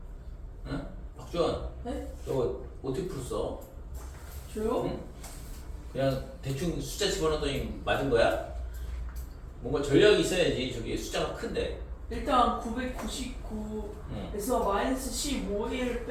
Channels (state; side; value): identical; both; correlation 1.00